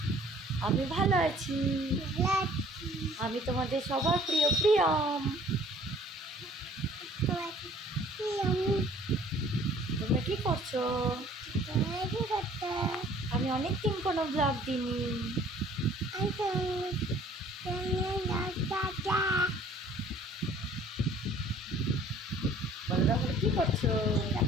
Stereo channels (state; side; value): normal; both; correlation 0.54